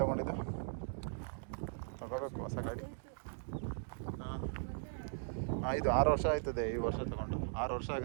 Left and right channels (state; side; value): silent; left; digital silence